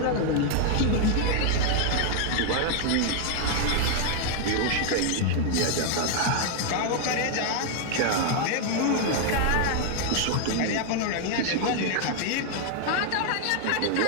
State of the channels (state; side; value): different; both; correlation 0.00